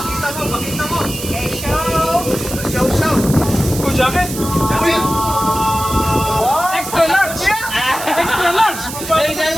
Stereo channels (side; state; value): right; noise; hiss, 9 dB below the sound